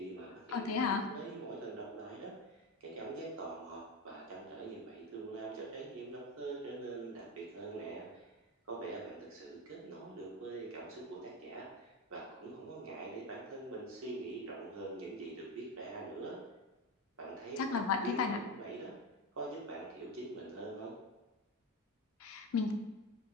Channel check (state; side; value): normal; both; correlation 0.19